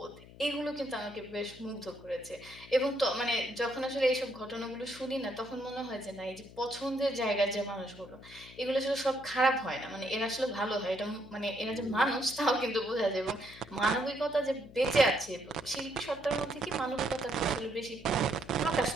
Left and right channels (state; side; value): noise; left; hum, 19 dB below the sound